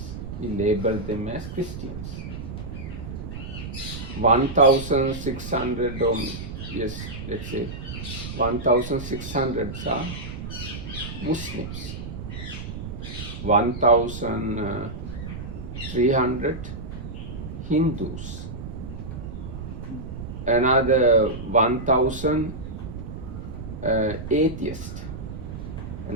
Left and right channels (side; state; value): right; noise; rumble, 8 dB below the sound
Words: We label them as Christians. 1,600 or yes, let's say 1,600 are Muslims. 1,300 Hindus. Another 1,000 atheists.